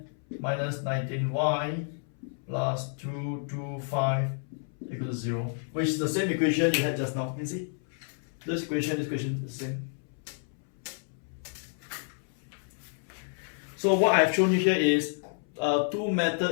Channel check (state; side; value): silent; right; 58 dB below the other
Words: minus 19y plus 225 equals to 0, which is the same equation you had just now. You can see this equation is the same. So what I've shown you here is two